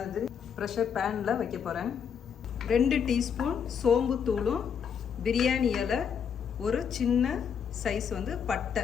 ப்ரெஷர் பேனில் வைக்க போகிறேன். 2 டீஸ்பூன் சோம்பு தூளும் பிரியாணி இலை, ஒரு சின்ன சைஸ் வந்து பட்டை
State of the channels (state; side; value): quieter; right; 7.3 dB